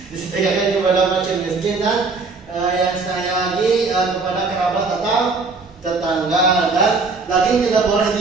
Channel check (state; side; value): quieter; left; 4.1 dB